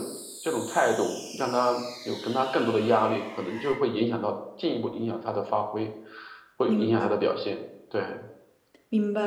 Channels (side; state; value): both; identical; correlation 1.00